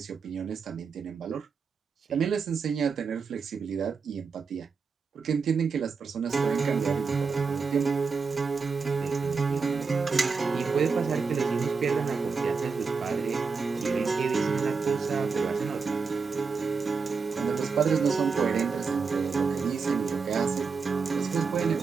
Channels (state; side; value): quieter; left; 5.1 dB